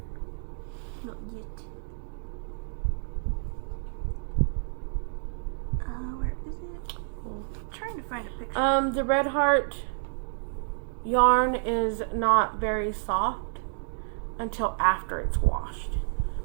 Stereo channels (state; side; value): silent; left; digital silence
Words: Not yet. Where is it? I'm trying to find a picture. The red heart yarn is not very soft until after it's washed.